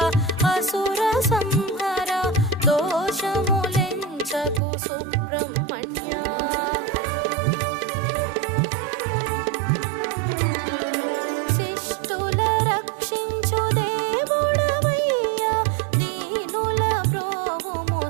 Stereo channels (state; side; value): drops out; left; at 4.6 s